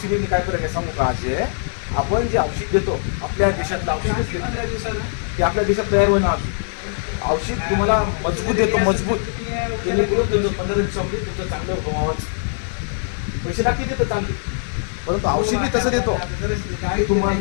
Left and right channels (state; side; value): silent; right; 57 dB below the other